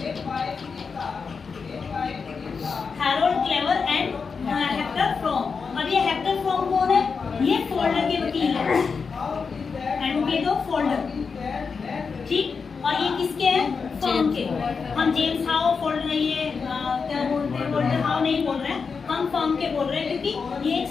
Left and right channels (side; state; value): right; quieter; 5.3 dB